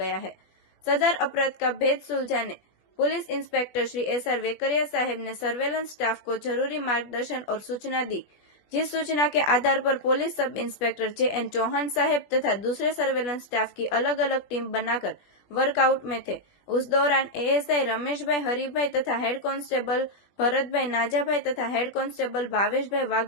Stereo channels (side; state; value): right; late; 21 ms